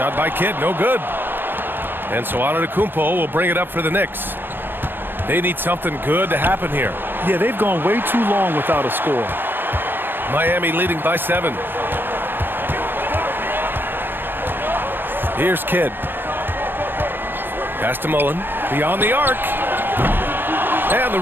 by Kidd, no good. And so Antetokounmpo will bring it up for the Knicks. They need something good to happen here. Yeah, they've gone way too long without a score. Miami leading by 7. Here's Kidd. Pass to Mullen. Beyond the arc. And the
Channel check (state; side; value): late; left; 0.098 ms